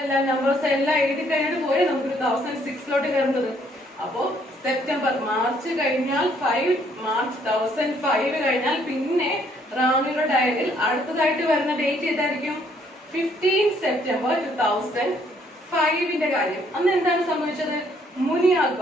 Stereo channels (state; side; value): normal; both; correlation 0.66